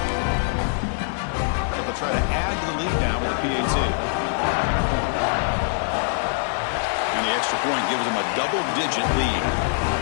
So they'll try to add to the lead now with the PAT. And the extra point gives them a double-digit lead.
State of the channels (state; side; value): silent; right; 63 dB below the other